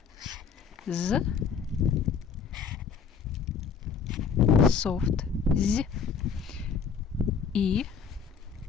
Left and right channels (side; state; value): right; quieter; 6.2 dB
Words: Z. Soft. Z. I.